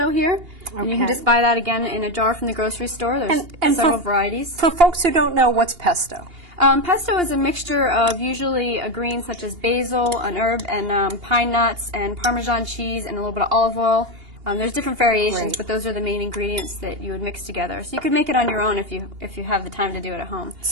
here. Okay. And you can just buy that again in a jar from the grocery store. There's several varieties. For folks who don't know, what's pesto? Pesto is a mixture of usually a green such as basil, an herb, and pine nuts, and Parmesan cheese, and a little bit of olive oil. There's different variations, but those are the main ingredients that you would mix together. So you could make it on your own if you have the time to do it at home.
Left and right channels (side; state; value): left; late; 2.8 ms